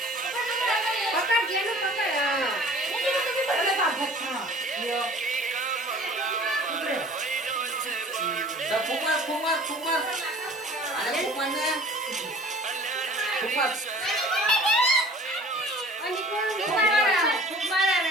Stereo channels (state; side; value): normal; both; correlation 0.46